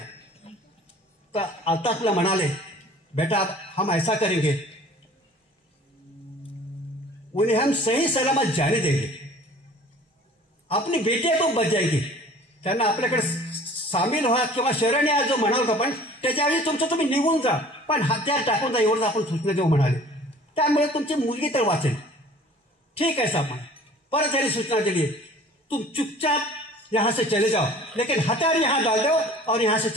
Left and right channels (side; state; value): both; normal; correlation 0.48